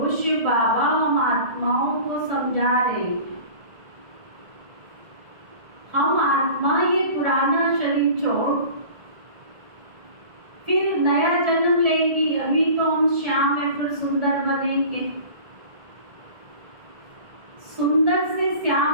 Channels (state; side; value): late; left; 1.7 ms